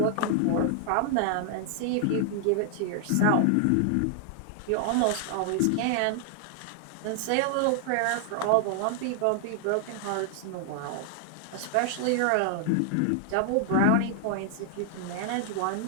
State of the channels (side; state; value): both; different; correlation 0.00